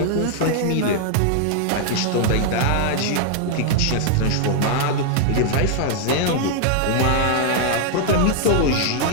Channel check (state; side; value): different; both; correlation 0.00